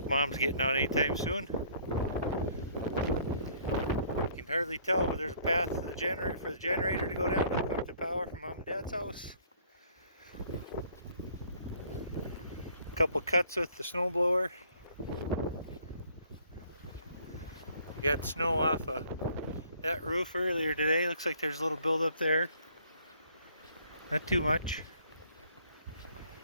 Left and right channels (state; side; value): inverted; both; correlation -0.60